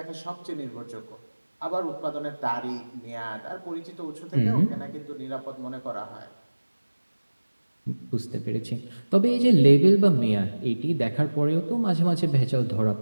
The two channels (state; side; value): inverted; both; correlation -1.00